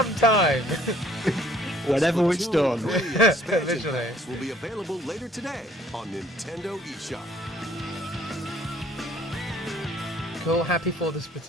Whenever it's Splatoon done. 3 expansion Visually. packs will be available later today on Nintendo eShop. Cool, happy for the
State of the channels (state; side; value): normal; both; correlation 0.59